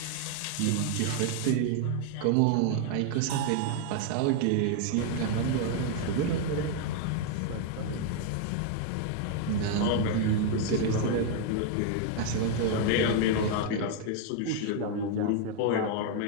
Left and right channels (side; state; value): both; different; correlation 0.00